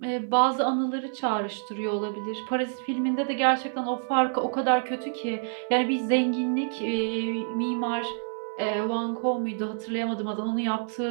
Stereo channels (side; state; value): left; silent; 57 dB below the other